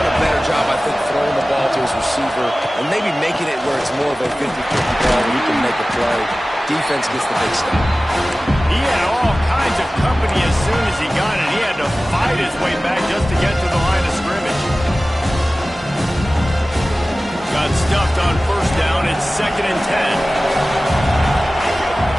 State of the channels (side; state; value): both; normal; correlation 0.97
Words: a better job, I think, throwing the ball to his receiver and maybe making it where it's more of a 50-50 ball where he can make a play. Defense gets the big stop. He had all kinds of company as soon as he got it. He had to fight his way back just to get to the line of scrimmage. Got stuffed on first down. It's 2nd and 10.